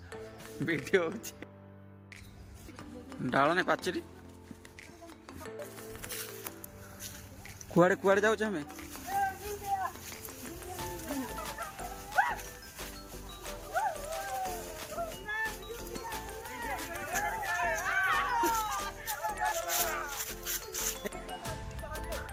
ଭିଡିଓ ହଉଛି ଡାଳନେ ପାଚେରୀ କୁଆଡେ କୁଆଡେ ଯାଉଛୁ ଆମେ?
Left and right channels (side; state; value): both; identical; correlation 1.00